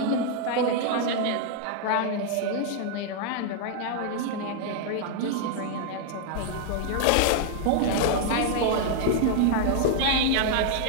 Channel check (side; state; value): both; different; correlation -0.01